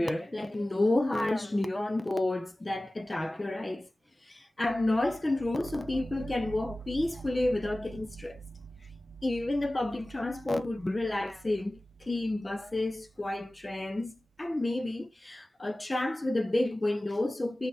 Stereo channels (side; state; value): both; normal; correlation 0.97